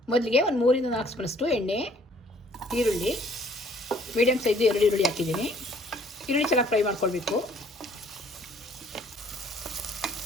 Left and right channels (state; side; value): normal; both; correlation 0.59